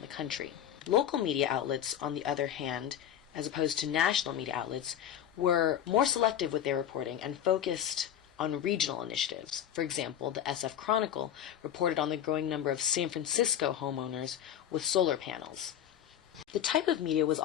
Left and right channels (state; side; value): quieter; right; 10.2 dB